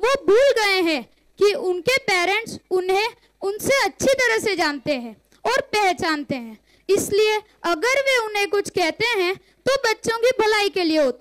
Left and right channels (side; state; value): both; identical; correlation 1.00